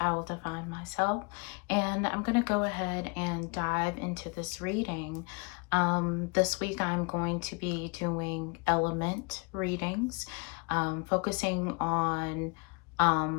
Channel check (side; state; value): right; quieter; 31.6 dB